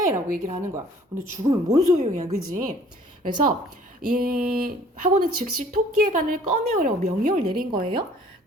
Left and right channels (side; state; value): both; normal; correlation 0.54